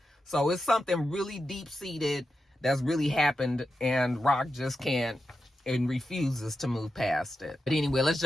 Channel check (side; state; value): both; normal; correlation 0.89